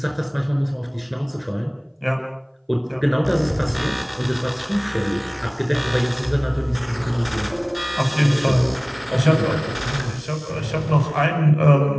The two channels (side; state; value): both; identical; correlation 1.00